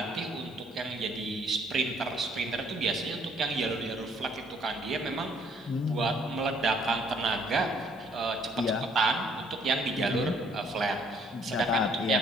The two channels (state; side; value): noise; left; hiss, 29 dB below the sound